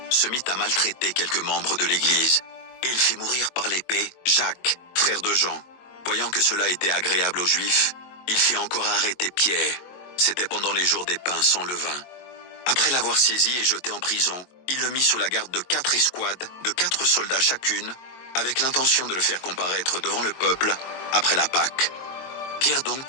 se mit à maltraiter quelques membres de l'Église, et il fit mourir par l'épée Jacques, frère de Jean. Voyant que cela était agréable aux Juifs, il fit encore arrêter Pierre. C'était pendant les jours des pains sans levain. Après l'avoir saisi et jeté en prison, il le mit sous la garde de 4 escouades, de 4 soldats chacune, avec l'intention de le faire comparaître devant le peuple après la Pâque. Pierre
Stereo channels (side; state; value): right; late; 22 ms